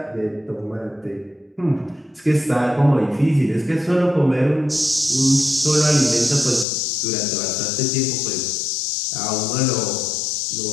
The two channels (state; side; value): drops out; right; at 6.7 s